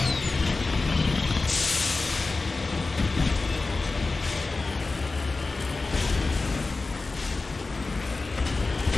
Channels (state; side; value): quieter; right; 3.6 dB